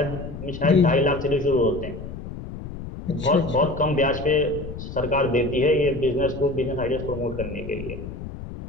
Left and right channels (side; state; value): left; noise; rumble, 10 dB below the sound